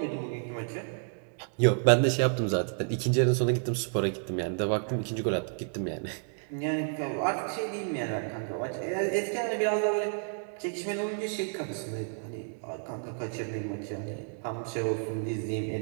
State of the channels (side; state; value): left; silent; 57 dB below the other